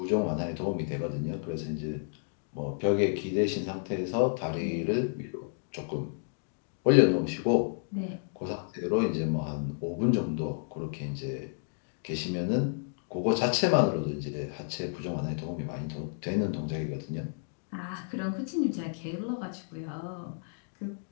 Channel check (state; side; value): silent; right; digital silence